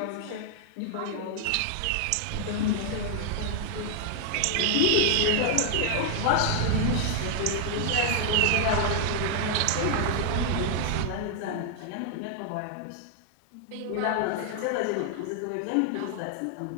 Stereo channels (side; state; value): both; different; correlation 0.00